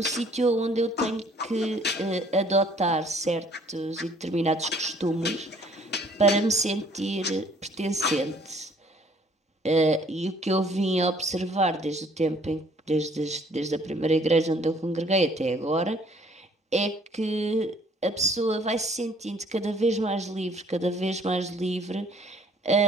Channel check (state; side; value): normal; both; correlation 0.59